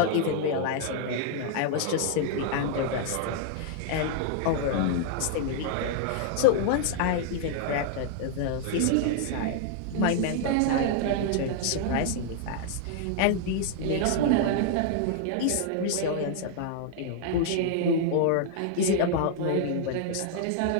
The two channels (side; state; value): both; different; correlation 0.00